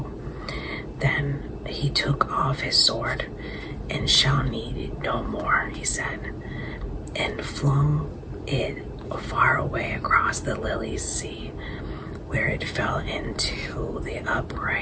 Then he took off his sword. "And shall need it no more," he said, and flung it far away across the lily sea, where it fell into the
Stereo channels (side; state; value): both; identical; correlation 1.00